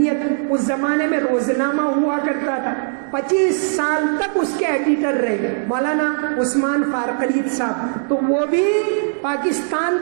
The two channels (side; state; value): left; silent; digital silence